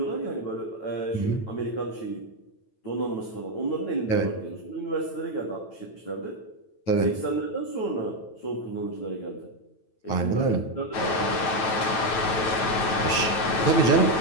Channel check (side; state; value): right; late; 9.1 ms